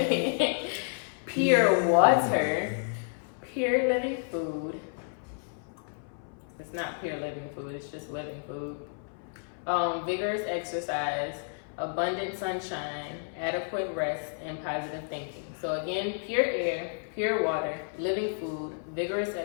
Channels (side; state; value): right; silent; 57 dB below the other